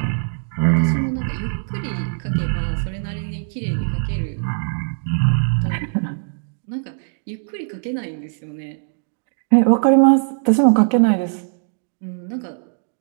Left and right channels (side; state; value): left; silent; digital silence